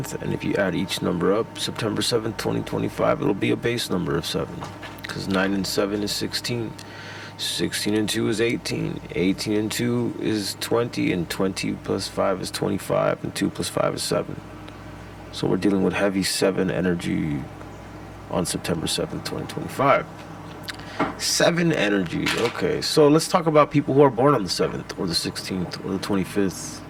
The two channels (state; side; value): identical; both; correlation 1.00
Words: and if you add each number up, September 7th, 2025, it'll be a base number of 7 because 9 and 7 is 16. 16 and 2 is 18. 18 and 2 is 20, and 20 plus 5 is 25, and 2 plus 5 is 7. So we're dealing with heavy 7 energy on September 7th, 2025. 7 energy. Okay, so let's talk about people who are born on the 7th, or the 16th, or the 25th,